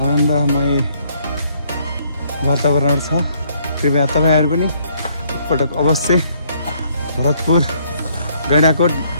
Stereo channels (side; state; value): both; inverted; correlation -0.68